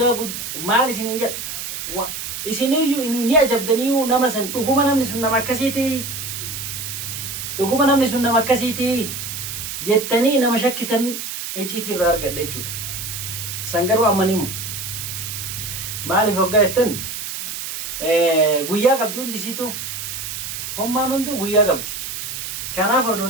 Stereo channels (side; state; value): right; noise; hiss, 6 dB below the sound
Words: maal isiniin jedha? Isiniyyuu ni ajabdanii nama san dhuguma namni sun nama akkasiiti. Dhuguma namni sun nama akkasiiti jettanii nama shakkitan iccitii irraa argadha jechuudha. San garuu ammaniimu. Maaliif hoggaa jettan? Guyyaa qabdi hundi isiitu hommaan hunduu guyyaa qabdi. Kanaaf